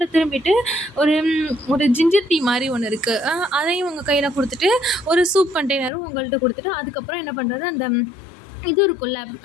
திரும்பிட்டு ஒரு ஒரு ஜிஞ்சர் டீ மாரி ஒண்ணு இருக்கு. அதையும் உங்க கையில குடுத்துட்டு, ஒரு சூப் கண்டெய்னரும் உங்கள்ட்ட குடுத்துட்டு, அதுக்கப்புறம் என்ன பண்றாரு, அந்த இது இருக்கும்ல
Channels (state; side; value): drops out; right; at 5.9 s